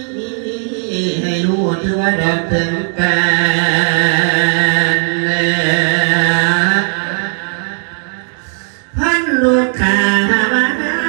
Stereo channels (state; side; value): silent; left; 56 dB below the other